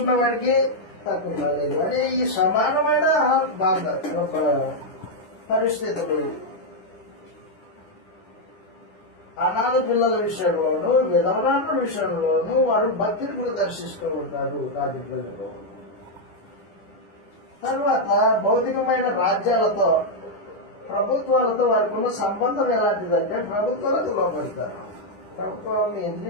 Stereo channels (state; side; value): late; right; 10 ms